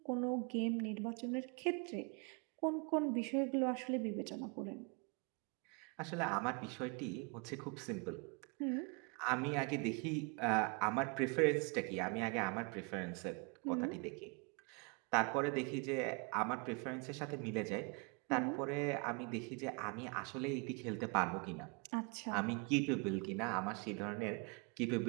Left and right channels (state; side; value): quieter; left; 33.3 dB